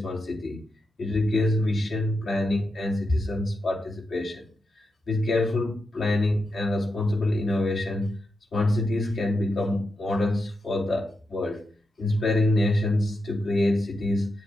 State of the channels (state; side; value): normal; both; correlation 0.87